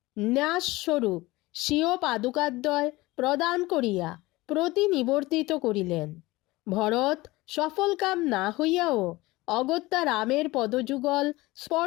ন্যাসস্বরূপ স্বীয় পাদুকাদ্বয় প্রদান করিয়া প্রতিনিবর্তিত করিলেন। ভরত সফল কাম না হইয়াও অগত্যা রামের পদযুগল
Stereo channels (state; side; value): quieter; right; 20.3 dB